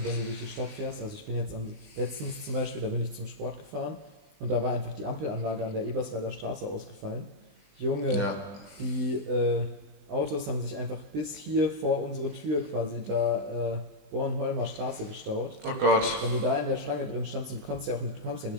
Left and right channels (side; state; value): left; late; 20 ms